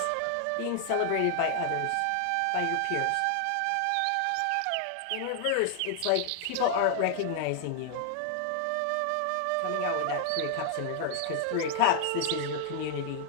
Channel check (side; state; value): both; different; correlation 0.00